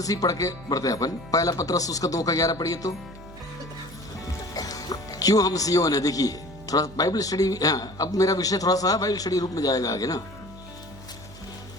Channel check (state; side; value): noise; right; hum, 17 dB below the sound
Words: ही पढ़ के बढ़ते हैं अपन। पहला पत्रस उसका 2:11 पढ़िए तो। क्यों हम सियोन है? देखिए थोड़ा बाइबल स्टडी। अब मेरा विषय थोड़ा सा बाइबल स्टडी रूप में जाएगा आगे ना।